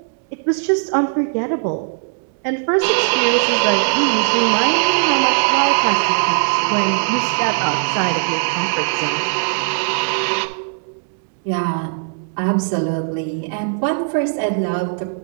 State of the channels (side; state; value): left; silent; digital silence